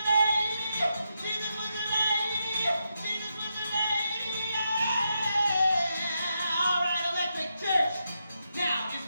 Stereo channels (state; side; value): inverted; both; correlation -0.84